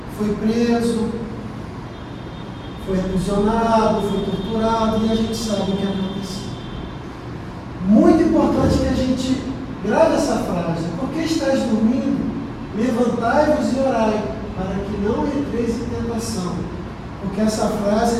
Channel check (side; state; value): both; identical; correlation 1.00